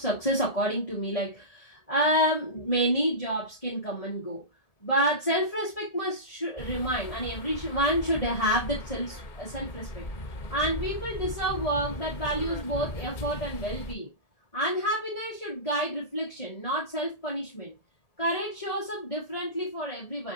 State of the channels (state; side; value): late; right; 1.7 ms